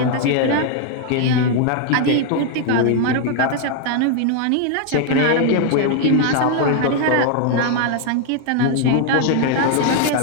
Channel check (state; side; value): different; both; correlation 0.00